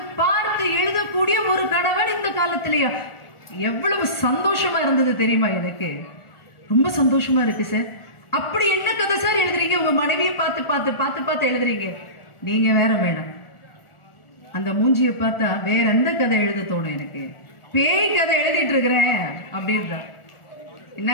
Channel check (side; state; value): right; late; 1.4 ms